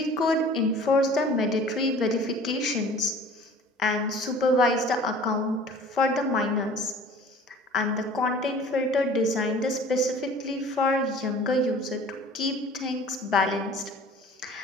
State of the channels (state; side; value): normal; both; correlation 0.46